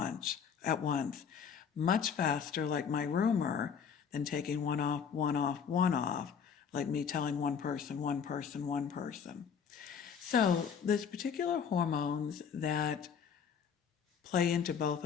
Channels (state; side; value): quieter; right; 7.0 dB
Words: Much faster, like my rumor, than taking one off, one off, one off, like me telling one person, one person, one person. So there's particular hormones that play into both